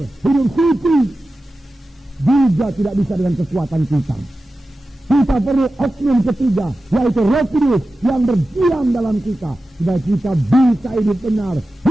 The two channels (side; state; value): both; normal; correlation 0.94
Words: hidup suci, juga tidak bisa dengan kekuatan kita. Kita perlu oknum ketiga, yaitu Roh Kudus yang berdiam dalam kita, supaya kita bisa hidup benar,